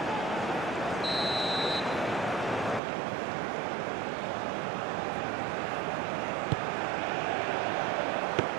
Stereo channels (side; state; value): left; drops out; at 2.8 s